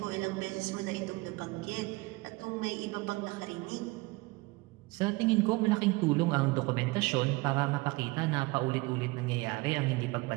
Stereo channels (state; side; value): quieter; left; 23.3 dB